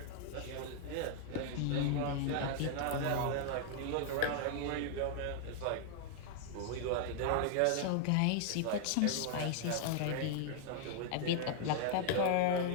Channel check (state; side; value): different; both; correlation 0.00